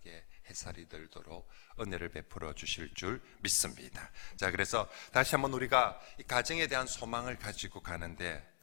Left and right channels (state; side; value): silent; right; digital silence